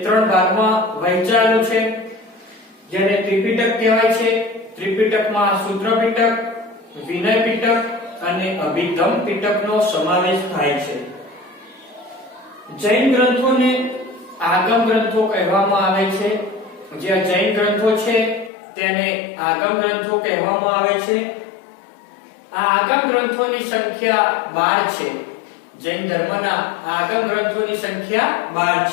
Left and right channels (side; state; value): right; drops out; at 18.5 s